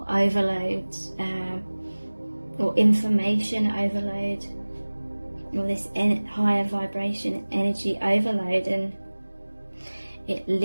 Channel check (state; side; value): inverted; both; correlation -1.00